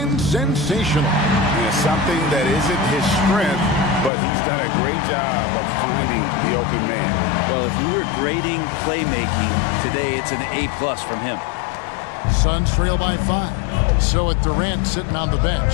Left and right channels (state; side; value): drops out; right; at 4.1 s